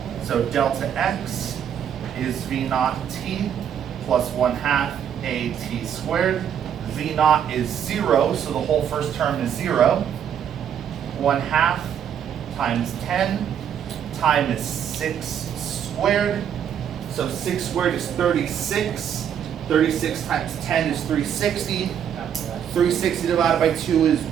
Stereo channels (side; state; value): left; quieter; 8.9 dB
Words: So delta x is v naught t plus 1/2 a t squared. V naught is 0, so the whole first term is 0. 1/2 times 10. Time is 6 squared. So 6 squared is 36. 36 times 10 is 360. 360 divided by 2 is